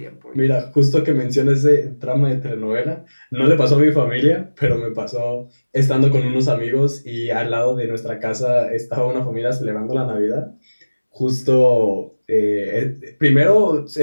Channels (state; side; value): inverted; both; correlation -1.00